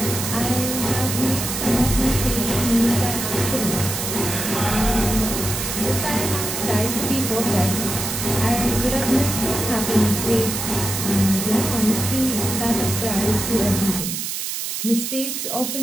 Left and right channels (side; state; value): right; noise; hiss, 4 dB below the sound